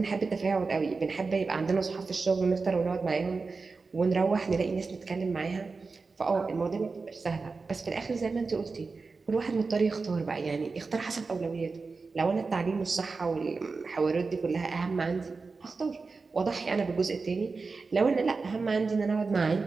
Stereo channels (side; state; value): left; quieter; 4.3 dB